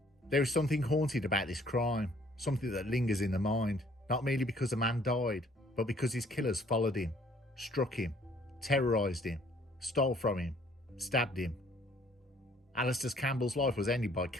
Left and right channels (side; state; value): both; normal; correlation 0.60